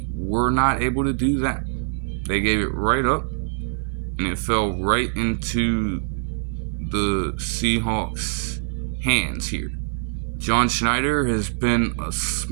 were not able to do that. They gave it right up, and it fell right into the Seahawks' hands here. John Schneider has been a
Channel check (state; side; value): silent; left; 55 dB below the other